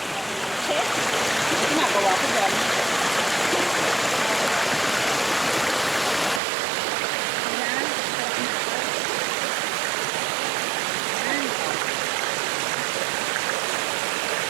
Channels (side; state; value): left; drops out; at 6.4 s